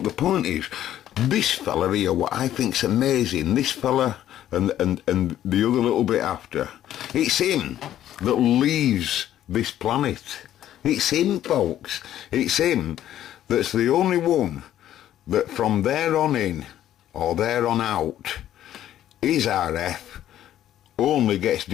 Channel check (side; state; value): right; quieter; 12.0 dB